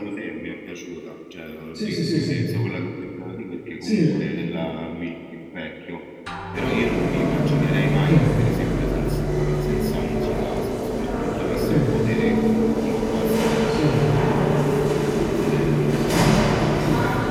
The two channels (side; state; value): both; identical; correlation 1.00